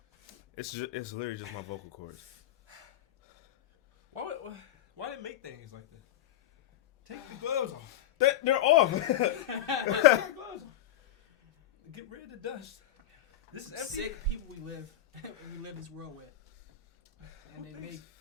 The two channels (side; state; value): right; quieter; 11.7 dB